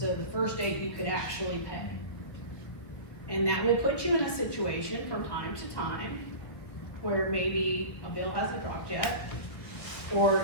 the first date you could actually pay. And that will put you in a situation from time to time where maybe a bill hasn't dropped yet,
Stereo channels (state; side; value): late; right; 1.6 ms